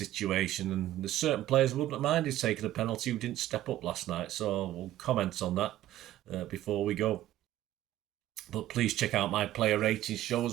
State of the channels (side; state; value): left; quieter; 13.9 dB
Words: and there's certain players who wouldn't have minded taking a penalty who didn't step up last night. So we'll comment on that before we go. But please check out my player ratings show